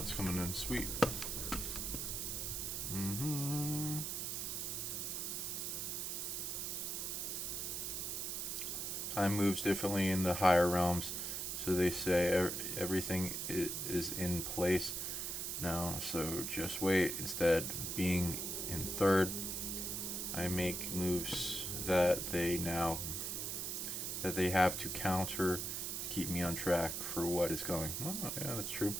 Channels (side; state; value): right; noise; hiss, 2 dB below the sound